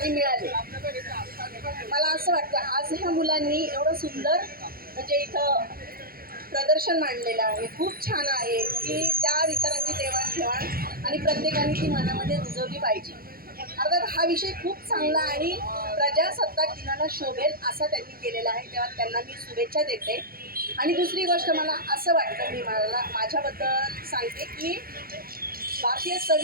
मिळाले. मला असं वाटतं आज ह्या मुलांनी एवढं सुंदर म्हणजे इथं प्रदर्शन मांडलेलं आहे. खूप छान आहे की त्या विचारांची देवाणघेवाण आणि प्रत्येकाने ती मनामध्ये रुजवली पाहिजे. अर्थात हा विषय खूप चांगला आणि प्रजासत्ताक दिनाला शोभेल असा त्यांनी केलेला आहे. तेव्हा त्यांना मी शुभेच्छा देते. आणि दुसरी गोष्ट मला असं वाटतं, मी माझ्याबद्दल सांगते की भारतीय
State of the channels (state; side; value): late; left; 0.43 ms